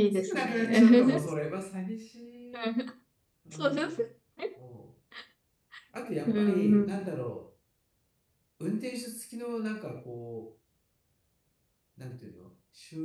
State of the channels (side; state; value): both; identical; correlation 1.00